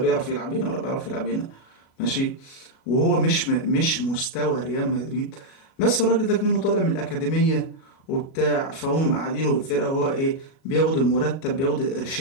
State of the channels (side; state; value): right; late; 37 ms